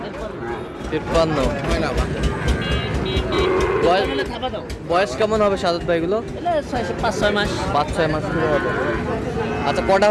53 হয় না বা? বয়স তাহলে খাবা দাও। বয়স কেমন হবে সাদত ভাই এগুলো? এলে 5-6 মাস 5-6 মাস করে হবে। আচ্ছা, কটা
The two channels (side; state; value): both; identical; correlation 1.00